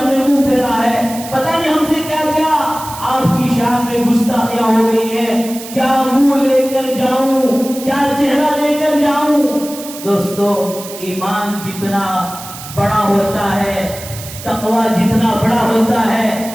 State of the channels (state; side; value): noise; right; hiss, 13 dB below the sound